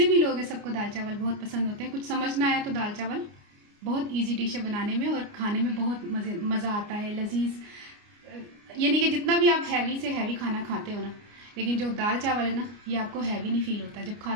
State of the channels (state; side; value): late; left; 29 ms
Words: भी लोग हैं सबको दाल चावल बहुत पसंद होते हैं। कुछ समझ ना आया तो दाल चावल बहुत इजी डिश है बनाने में, और खाने में बहुत मज़ा आता है, लजीज। ये नहीं कि जितना भी आप हैवी से हैवी खाना खाते हो ना, लेकिन जो दाल चावल है ना ये आपको हैवी नहीं फील होता। जब